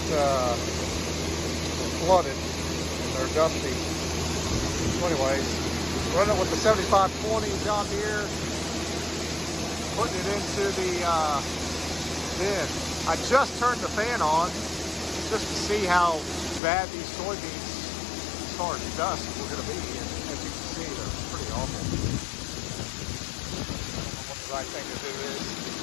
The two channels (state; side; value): drops out; right; at 16.6 s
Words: were flooded and they're dusty. So anyways, running with the 7520 John Deere, putting it into the bin. I just turned the fan on just to see how bad these soybeans as far as dust were going to be, and as you can see, they're pretty awful. I don't know what the right thing to do is.